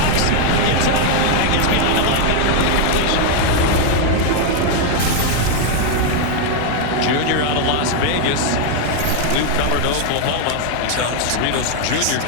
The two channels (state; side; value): different; both; correlation 0.01